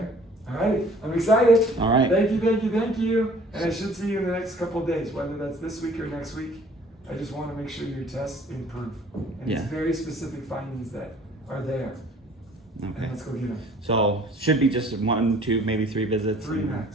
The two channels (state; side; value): normal; both; correlation 0.54